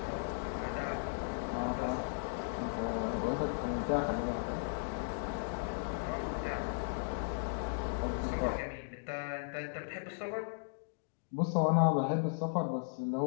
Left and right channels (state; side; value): silent; right; digital silence